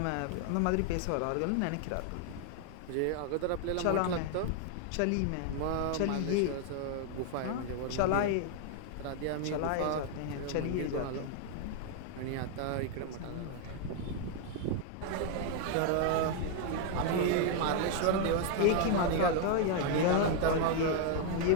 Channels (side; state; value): both; different; correlation 0.00